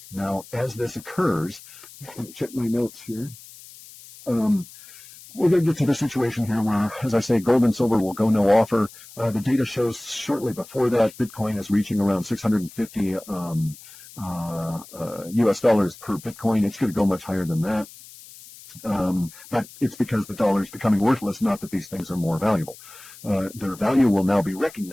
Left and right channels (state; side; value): noise; left; hiss, 19 dB below the sound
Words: Now, as this occurs, let me check my notes here. We're going to get to the situation here where, as I say, gold and silver will go no offer. The data shows shortly before that, Bitcoin is reaching around 650 US dollars per Bitcoin. It's going to go much higher than that. But it's because the dollar is becoming worthless, not that these things are more valuable. Their value will now be